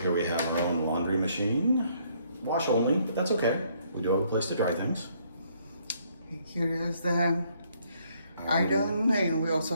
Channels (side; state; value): both; inverted; correlation -0.68